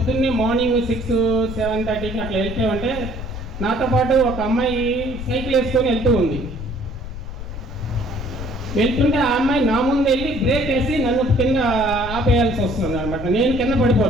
మార్నింగ్ 6, 7:30కి అట్లా వెళ్తే ఉంటే నాతో పాటు ఒక అమ్మాయి సైకిల్ వేసుకొని వెళ్తూ ఉంది. వెళ్తుంటే ఆ అమ్మాయి నా ముందు వెళ్ళి బ్రేక్ వేసి నన్ను కింద ఆపేయాల్సి వస్తుంది అనమాట. నేను కింద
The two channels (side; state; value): left; noise; rumble, 9 dB below the sound